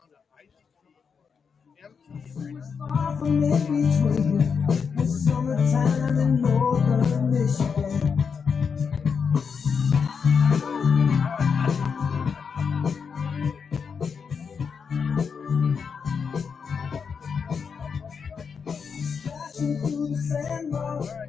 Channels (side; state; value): right; quieter; 6.1 dB